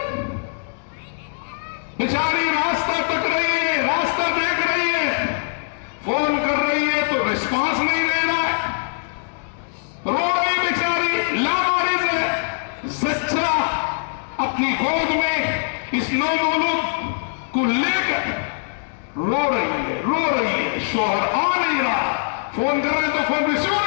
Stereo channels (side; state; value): right; silent; digital silence